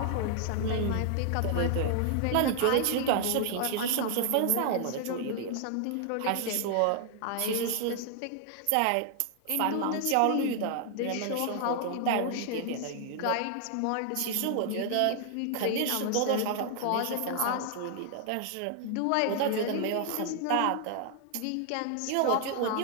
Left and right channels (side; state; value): both; different; correlation 0.00